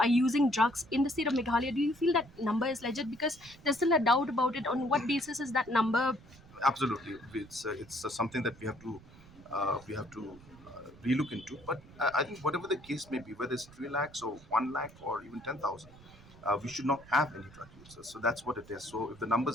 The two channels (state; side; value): noise; right; rumble, 22 dB below the sound